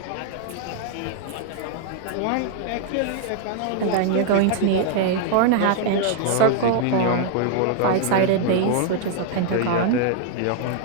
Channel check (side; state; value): both; different; correlation 0.00